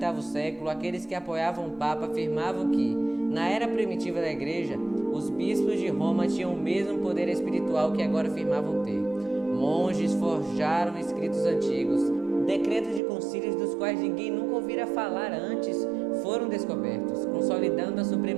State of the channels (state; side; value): drops out; left; at 13.0 s